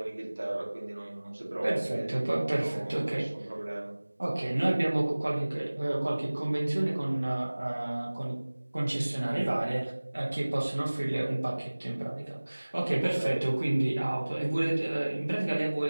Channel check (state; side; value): inverted; both; correlation -1.00